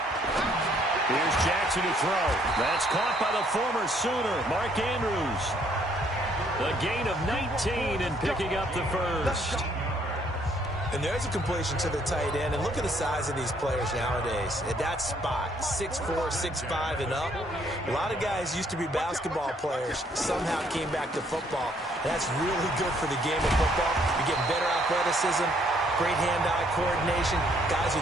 Here's Jackson to throw. That's caught by the former Sooner, Mark Andrews. A gain of 19 and picking up the first. And there's a completion to the tight end. And look at the size of these players nowadays. At that spot, 6'4", 6'5", and up. A lot of guys used to be basketball players, somehow came back to football. And that's really good for the game of football. You're getting better athleticism, great hand-eye coordination, guys who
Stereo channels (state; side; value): normal; both; correlation 0.66